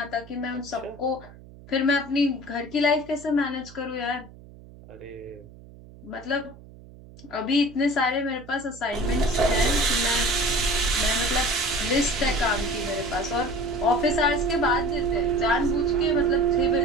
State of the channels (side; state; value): right; noise; hum, 20 dB below the sound